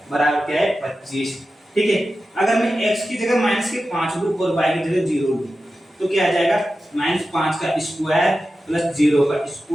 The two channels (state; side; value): normal; both; correlation 0.93